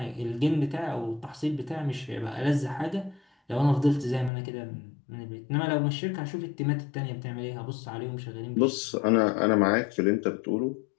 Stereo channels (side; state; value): right; drops out; at 4.3 s